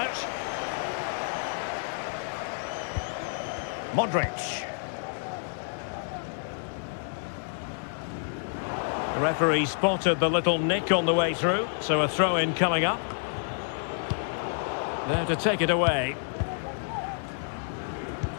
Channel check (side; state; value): right; silent; digital silence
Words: Modric. The referee spotted the little nick on the way through, so a throw-in coming up. There to take it away.